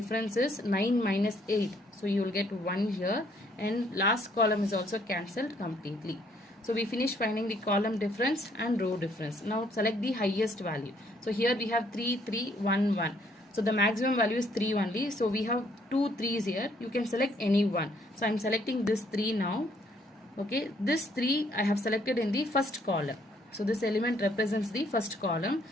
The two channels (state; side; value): normal; both; correlation 0.66